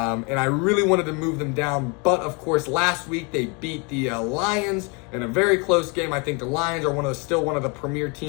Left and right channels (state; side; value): quieter; right; 31.8 dB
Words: I really wanted to move them down, but of course last week they beat the Lions in a very close game. I think the Lions are still one of the premier